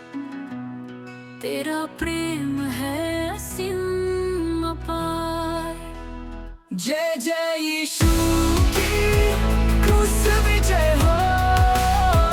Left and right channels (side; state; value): both; identical; correlation 1.00